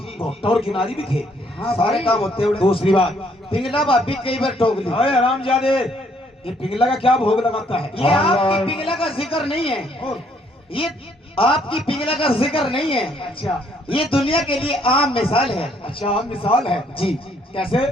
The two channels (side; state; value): both; normal; correlation 0.67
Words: घोट्टा और किनारी भी थे। सारे काम होते हुए दूसरी बात पिंगला भाभी कई बार टोक ली अरे हरामजादे ये पिघला का क्या भोग लगाता है? ये आपकी पिघला का जिक्र नहीं है, और ये आपकी पिघला का जिक्र नहीं है, अच्छा ये दुनिया के लिए आम मिसाल है। अच्छा, हम मिसाल है जी, कैसे?